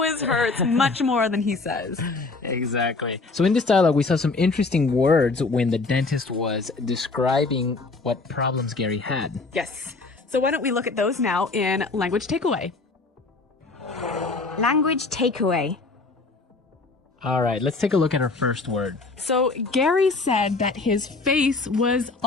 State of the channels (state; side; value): quieter; right; 3.7 dB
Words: hurts much more than he says. Exactly. So in this dialogue, we saw some interesting words when the dentist was describing what problems Gary had. Yes. So why don't we look at those now in language takeaway? Language takeaway. All right, let's take a look at our first word. So Gary said that his face was